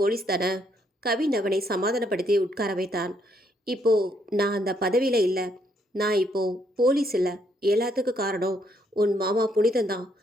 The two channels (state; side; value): normal; both; correlation 0.72